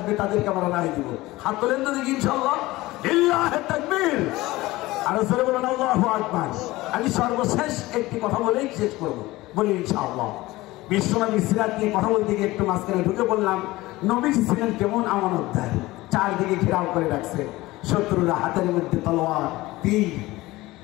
তাদেরকে আমরা রায় দিব। হাত তোলেন তো দেখি ইনশাআল্লাহ। লিল্লাহি তাকবীর। আর জোরে বলেন আল্লাহু আকবার। আমি সর্বশেষ একটি কথা বলেই শেষ করব, বলি ইনশাআল্লাহ। বিশ্বনবী সিরাত নিয়ে কথা বলতে গিয়ে একটু মাঝখানে ঢুকে বললাম, নবীজি ছিলেন কেমন আমানতদার। চারদিকে ঘেরাও করে রাখছে, শত্রুরা হাতের মধ্যে তলোয়ার, তীর।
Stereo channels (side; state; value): right; quieter; 19.0 dB